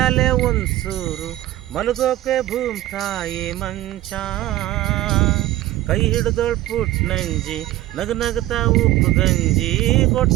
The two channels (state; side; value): quieter; left; 15.5 dB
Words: ಒಂದು ಸೂರು, ಮಲಗೋಕೆ ಭೂಮ್ ತಾಯಿ ಮಂಚ, ಕೈ ಹಿಡಿದೋಳ್ ಪುಟ್ನಂಜಿ ನಗು ನಗುತ್ತಾ ಉಪ್ಪು ಗಂಜಿ,